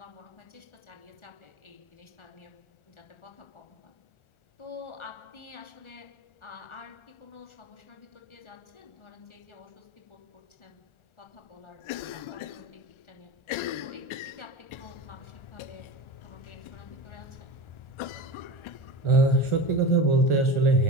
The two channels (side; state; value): right; late; 1.4 ms